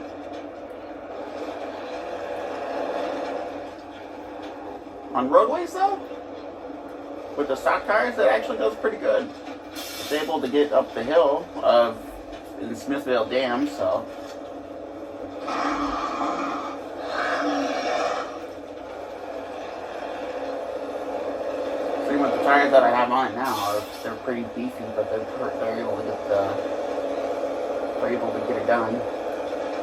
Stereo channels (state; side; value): identical; both; correlation 1.00